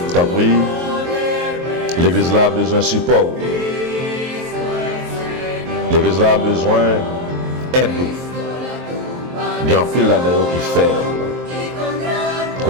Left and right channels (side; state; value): left; late; 23 ms